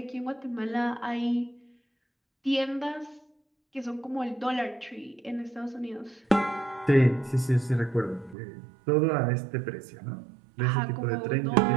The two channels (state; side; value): drops out; left; at 8.3 s